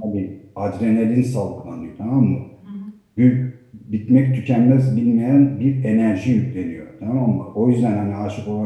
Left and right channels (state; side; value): identical; both; correlation 1.00